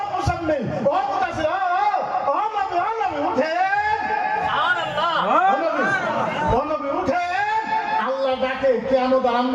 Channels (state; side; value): identical; both; correlation 1.00